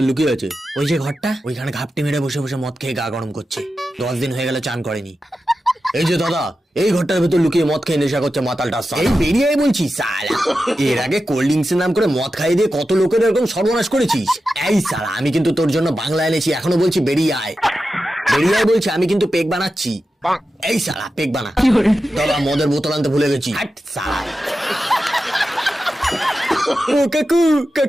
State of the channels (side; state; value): both; normal; correlation 0.91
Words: লুকিয়ে আছে? ওই যে ঘরটা, ওইখানে ঘাপটি মেরে বসে বসে মদ খেয়ে গা গরম করছে। 10 দিন হয়ে গেল চান করেনি। এই যে দাদা, এই ঘরটার ভেতর লুকিয়ে মদ খেয়ে নেশা করছে মাতালটা। এই বেরিয়ে আয় বলছি সালা। এর আগে কোল্ড ড্রিঙ্কস এর নাম করে মদ খাইয়ে দিয়ে কত লোকের এরকম সর্বনাশ করেছিস। এই সালা, আমি কিন্তু তোর জন্য বাংলা এনেছি, এখনো বলছি বেরিয়ে আয়। বেরিয়ে আয় বলছি, আমি কিন্তু পেক বানাচ্ছি। এই সালা পেক বানা। দাদা মদের বোতল আনতে ভুলে গেছি। হাট সালা। ও কাকু,